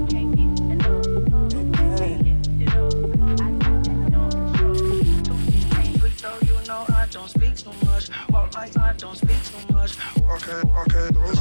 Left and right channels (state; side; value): inverted; both; correlation -1.00